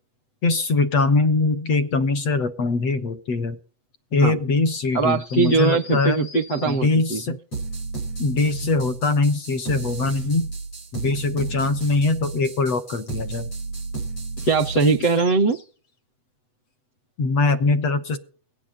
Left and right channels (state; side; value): late; right; 8.0 ms